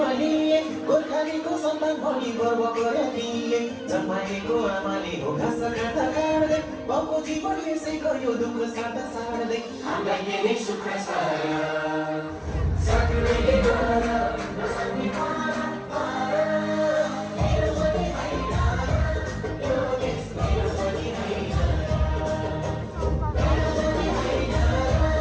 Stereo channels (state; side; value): identical; both; correlation 1.00